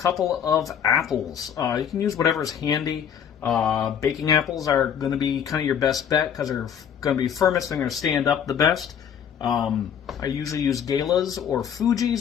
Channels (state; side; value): quieter; right; 8.4 dB